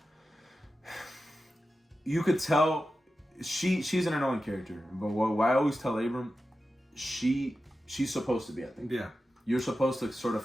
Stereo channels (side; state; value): both; normal; correlation 0.92